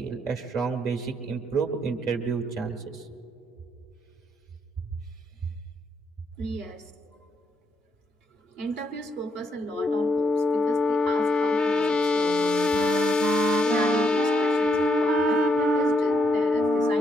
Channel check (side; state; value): both; normal; correlation 0.76